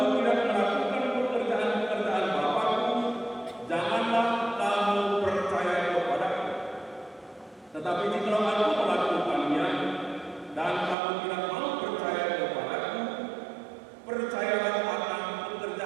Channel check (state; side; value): drops out; left; at 11.0 s